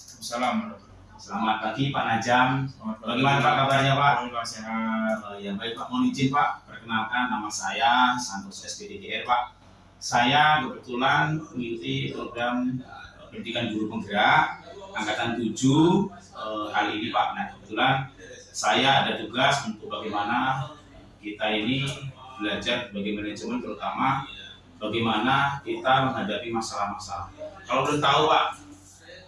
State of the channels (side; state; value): both; identical; correlation 1.00